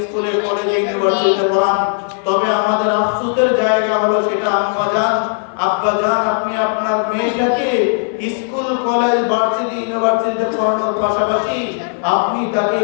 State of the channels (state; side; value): silent; right; digital silence